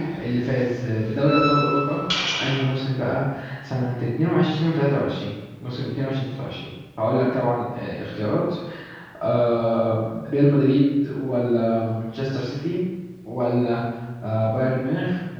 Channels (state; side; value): identical; both; correlation 1.00